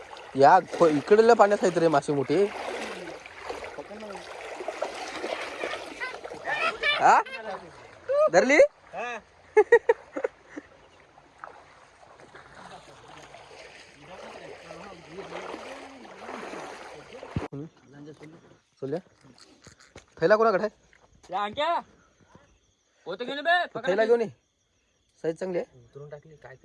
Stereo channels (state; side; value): identical; both; correlation 1.00